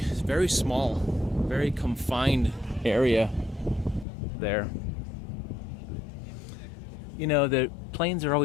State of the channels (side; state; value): right; drops out; at 4.0 s